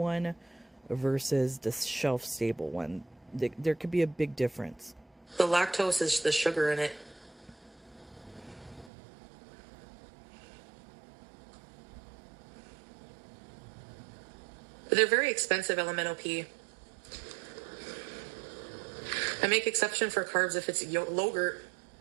versus the shelf-stable one. There could be a big difference. The lactose is the sugar in it. But they're very expensive, LMNOP. I make exception for carbs if it's yogurt.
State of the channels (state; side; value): drops out; left; at 8.9 s